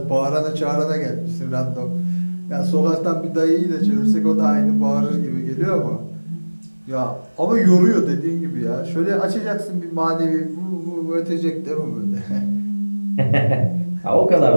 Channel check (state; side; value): inverted; both; correlation -1.00